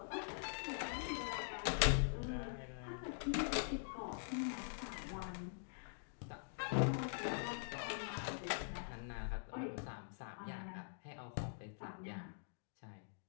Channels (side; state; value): right; silent; digital silence